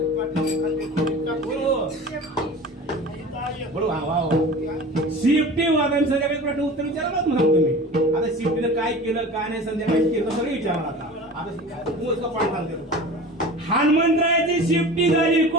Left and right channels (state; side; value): normal; both; correlation 0.37